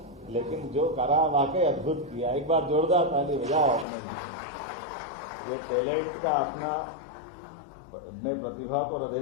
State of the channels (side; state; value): right; drops out; at 3.9 s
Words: लेकिन जो करा वाकई अद्भुत किया। एक बार जोरदार ताली बजाओ अपने ये टैलेंट का अपना। मैं प्रतिभा को